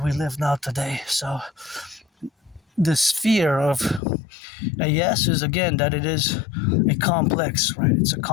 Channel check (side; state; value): right; drops out; at 4.0 s